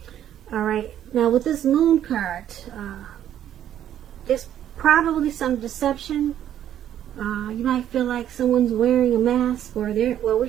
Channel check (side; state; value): left; quieter; 10.8 dB